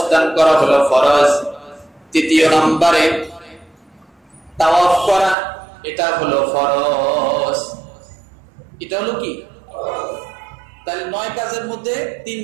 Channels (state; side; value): drops out; left; at 5.4 s